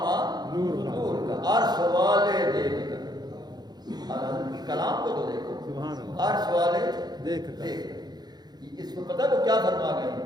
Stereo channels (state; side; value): late; left; 0.20 ms